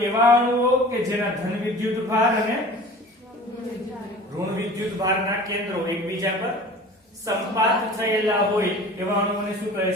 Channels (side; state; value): both; normal; correlation 0.41